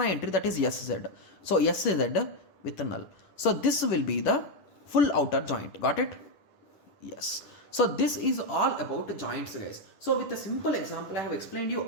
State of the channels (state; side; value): late; right; 10 ms